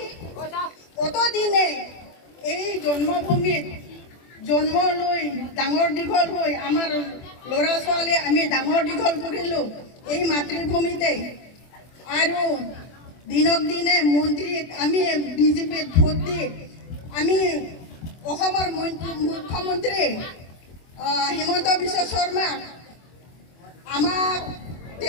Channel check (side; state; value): right; late; 24 ms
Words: কতদিনে এই জন্মভূমিত জন্ম লৈ ডাঙৰ দীঘল হৈ আমাৰ ল'ৰা ছোৱালী আমি ডাঙৰ দীঘল কৰিলোঁ এই মাতৃভূমিতে, আৰু দিনক দিনে মন্ত্ৰীক আমি বিজেপিত ভোট দি আমি অসমৰ মুখ্যমন্ত্ৰী হিমন্ত বিশ্ব শৰ্মাক আমাক